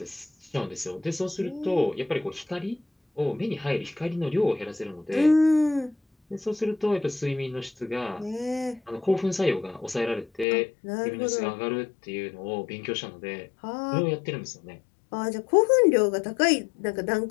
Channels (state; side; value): drops out; right; at 10.5 s